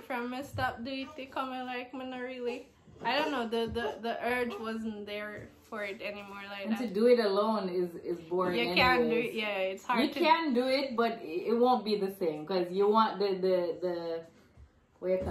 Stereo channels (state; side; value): identical; both; correlation 1.00